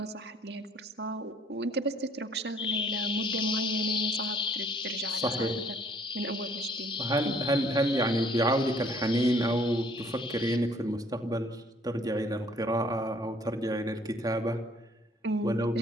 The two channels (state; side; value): normal; both; correlation 0.60